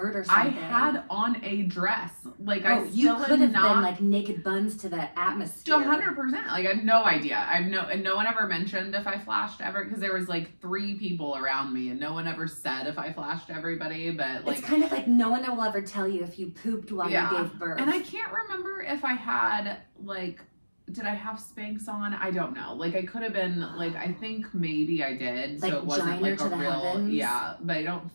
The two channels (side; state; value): both; inverted; correlation -1.00